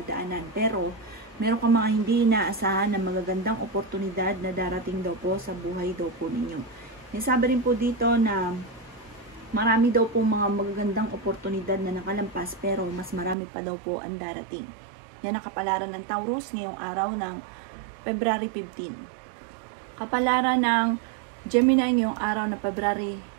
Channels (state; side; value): drops out; left; at 13.4 s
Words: Pero meron kang mga hindi inaasahan na magagandang oportunidad na darating daw po sa buhay daw po ninyo. Sabi rin po dito na marami daw po mga magagandang oportunidad na nakalampas pero mas marami pa daw po ang darating. Yan ang kapalaran ng Taurus ngayong araw ng February 15. Kapalaran ng Gemini ngayong araw ng February